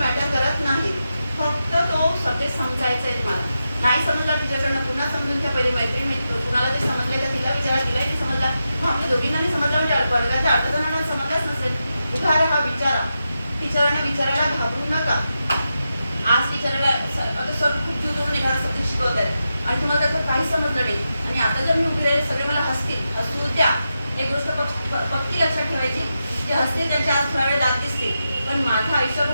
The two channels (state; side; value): inverted; both; correlation -0.89